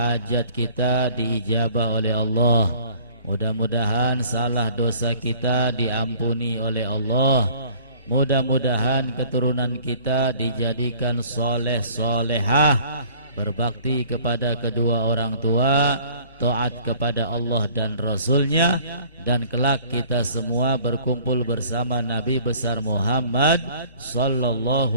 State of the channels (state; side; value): inverted; both; correlation -0.53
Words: kita diijabah oleh Allah. Mudah-mudahan salah dosa kita diampuni oleh Allah. Mudah-mudahan keturunan kita dijadikan soleh solehah, berbakti kepada kedua orang tua, taat kepada Allah dan Rasulnya, dan kelak kita semua berkumpul bersama Nabi besar Muhammad